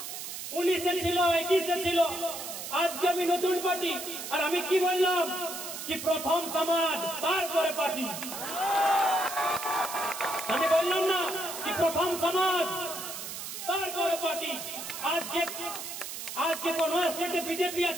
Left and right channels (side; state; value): right; noise; hiss, 8 dB below the sound